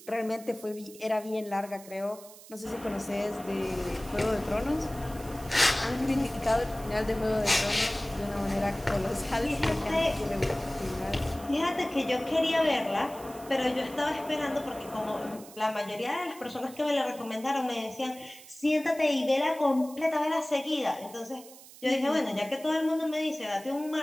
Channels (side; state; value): right; noise; hiss, 19 dB below the sound